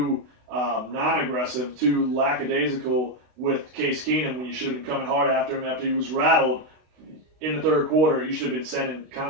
non-aggressive, too lackadaisical with Case Keenum when you should have been coming hard after him after he was rattled in the third quarter. You should have been sending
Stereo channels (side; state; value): left; late; 32 ms